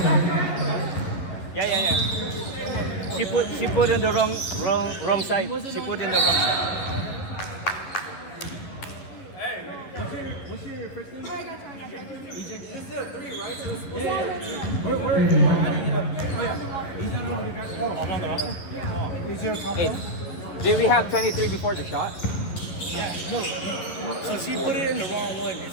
Yeah. She put in the wrong side. She put in the wrong side. What's your first name? I got you. EJ. This is a 3, right? So it's Where? I'm on the roster? Yeah. Is your top one? Did we have 23 before the shot? Yeah, no. So she put it in the wrong one.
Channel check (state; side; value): late; right; 11 ms